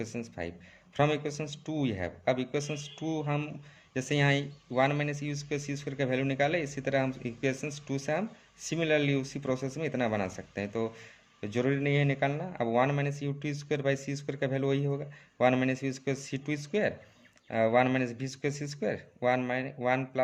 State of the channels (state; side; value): identical; both; correlation 1.00